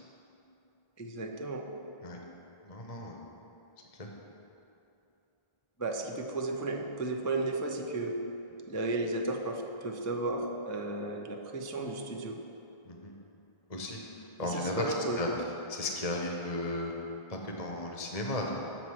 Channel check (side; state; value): right; late; 1.7 ms